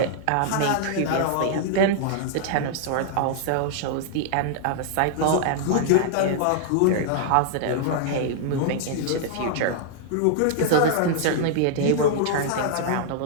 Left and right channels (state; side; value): different; both; correlation -0.01